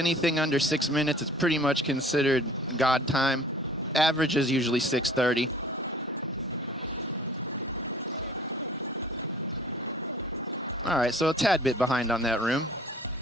under 6 minutes is pretty much considered god time. Average is usually 6:30. All right, so a tad bit behind on that room.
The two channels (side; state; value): both; normal; correlation 0.50